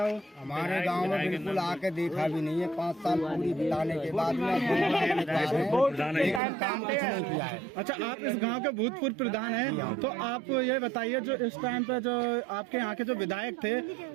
हो। हमारे गांव में बिल्कुल आके देखा भी नहीं है। 5 साल पूरी बिताने के बाद में लेकिन काम कुछ नहीं किया है। अच्छा, आप इस गांव के भूतपूर्व प्रधान हैं, तो आप ये बताइए, जो इस टाइम पे जो आपके यहाँ के जो विधायक थे,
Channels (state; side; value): drops out; left; at 6.4 s